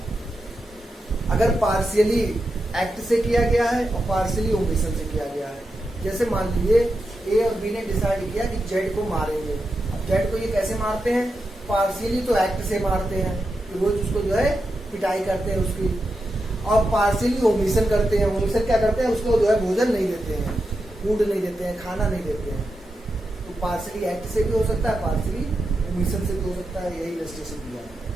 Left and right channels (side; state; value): both; normal; correlation 0.87